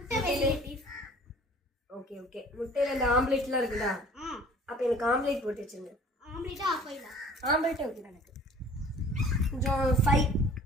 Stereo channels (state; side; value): normal; both; correlation 0.50